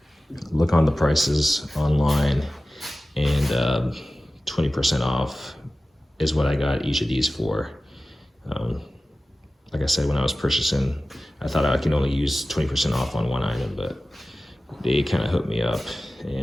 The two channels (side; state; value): both; normal; correlation 0.96